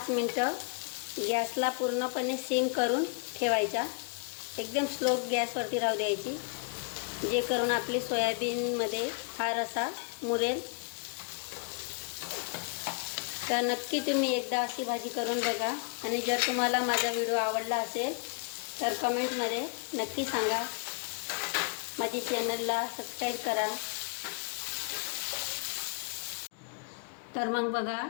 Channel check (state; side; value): quieter; right; 39.0 dB